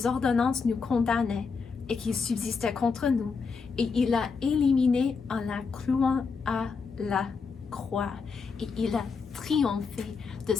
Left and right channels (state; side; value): quieter; right; 5.1 dB